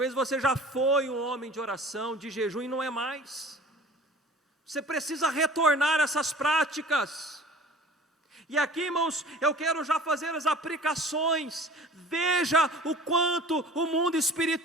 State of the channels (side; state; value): both; normal; correlation 0.45